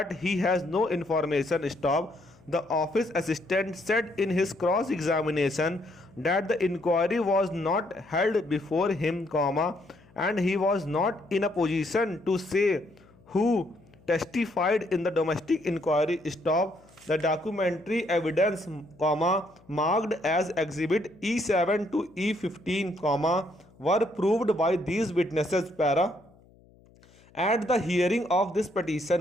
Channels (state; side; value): noise; left; hum, 28 dB below the sound